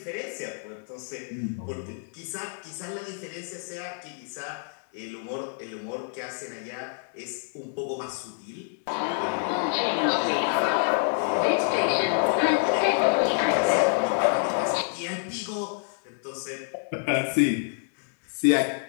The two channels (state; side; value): silent; right; 60 dB below the other